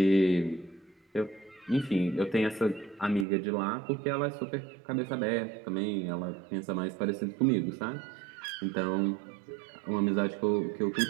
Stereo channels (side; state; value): left; drops out; at 3.2 s